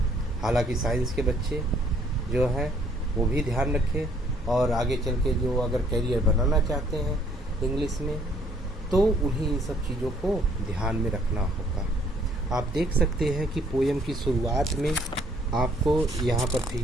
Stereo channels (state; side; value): normal; both; correlation 0.63